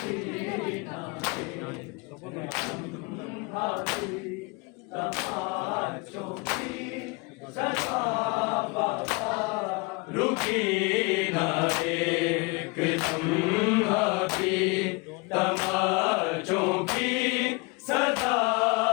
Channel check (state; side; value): quieter; right; 28.1 dB